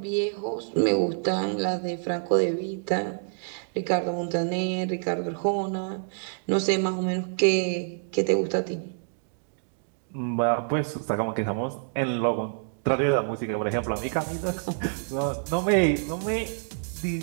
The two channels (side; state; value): left; silent; digital silence